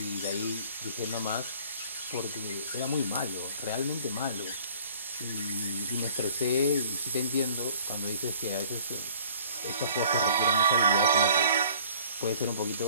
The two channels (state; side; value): inverted; both; correlation -0.52